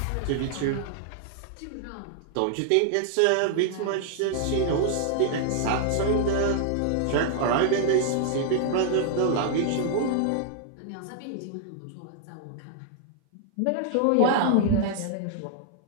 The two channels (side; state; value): both; different; correlation -0.01